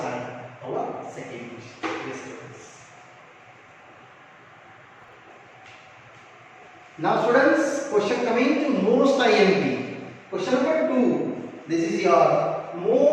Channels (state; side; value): identical; both; correlation 1.00